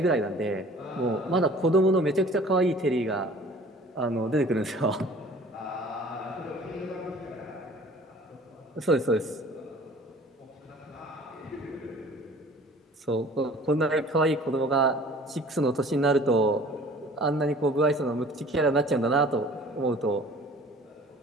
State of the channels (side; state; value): both; normal; correlation 0.48